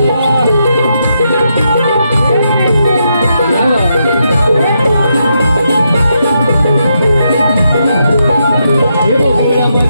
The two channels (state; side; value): inverted; both; correlation -0.81